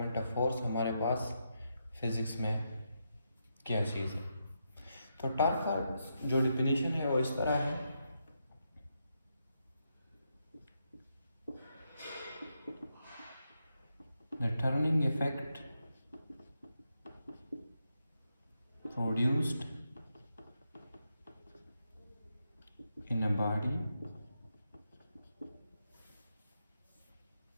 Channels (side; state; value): both; inverted; correlation -0.83